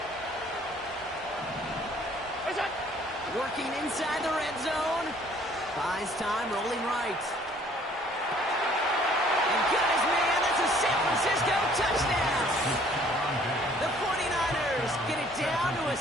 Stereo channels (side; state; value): both; normal; correlation 0.58